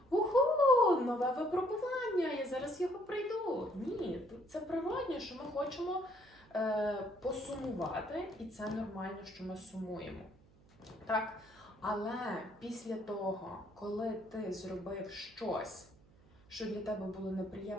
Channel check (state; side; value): noise; right; hum, 27 dB below the sound